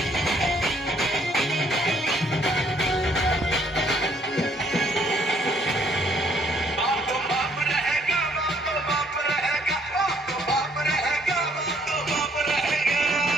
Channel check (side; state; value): both; normal; correlation 0.65